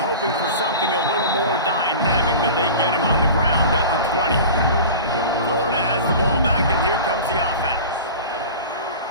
for something a little more dynamic, but they get him on the ground at the 20. Florida has the ball back, and here comes the offense.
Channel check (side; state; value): both; inverted; correlation -0.35